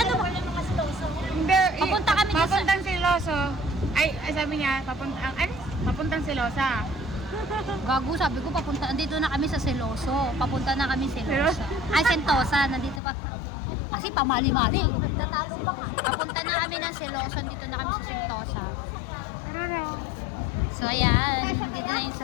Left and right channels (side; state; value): right; drops out; at 13.0 s